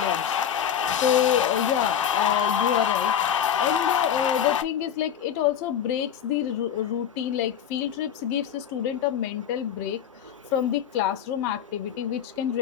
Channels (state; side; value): quieter; right; 9.1 dB